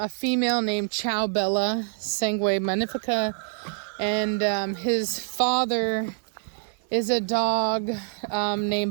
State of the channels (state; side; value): silent; left; digital silence